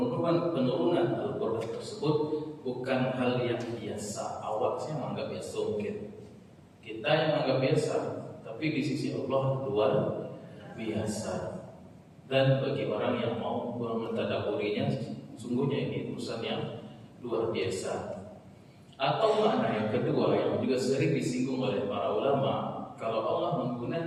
Al-Quran tersebut bukan hal yang biasa. Awak sih menganggap biasa mungkin, kita yang menganggap biasa, tapi tapi di sisi Allah luar biasa. Dan bagi orang yang mau mentadabburinya, sungguhnya ini urusan yang luar biasa. Atau makna yang kedua yang juga sering disinggung oleh para ulama, kalau Allah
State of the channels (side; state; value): both; identical; correlation 1.00